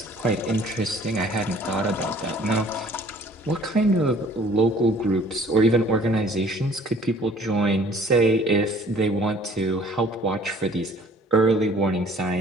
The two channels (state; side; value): normal; both; correlation 0.54